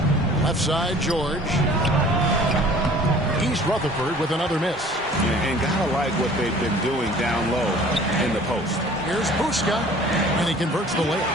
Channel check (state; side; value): normal; both; correlation 0.49